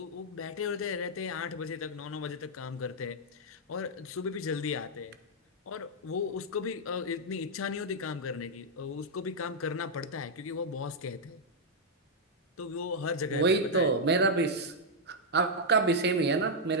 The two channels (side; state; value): both; normal; correlation -0.04